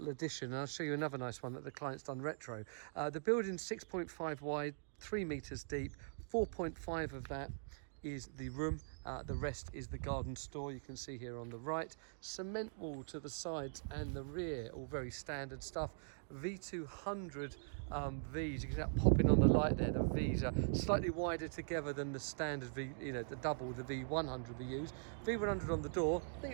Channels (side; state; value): left; silent; digital silence